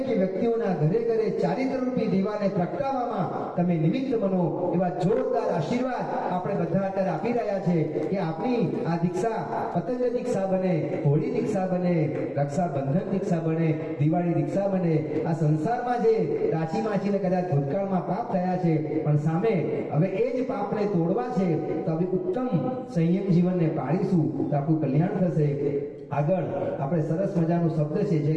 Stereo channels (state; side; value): identical; both; correlation 1.00